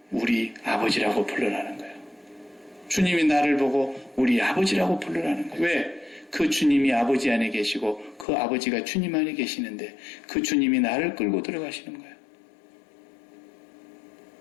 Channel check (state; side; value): drops out; right; at 8.2 s